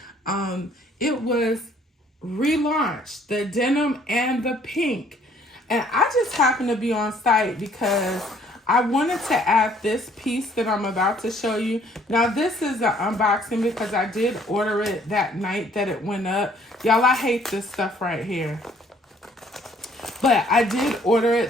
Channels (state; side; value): normal; both; correlation 0.61